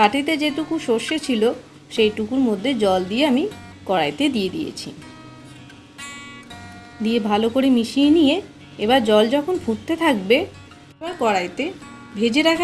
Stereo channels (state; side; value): identical; both; correlation 1.00